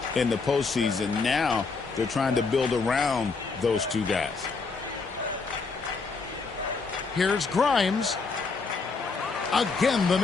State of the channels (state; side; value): quieter; right; 4.4 dB